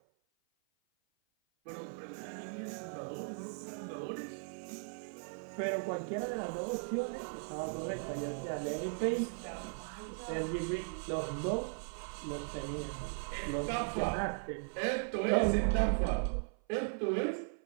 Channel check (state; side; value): silent; left; 53 dB below the other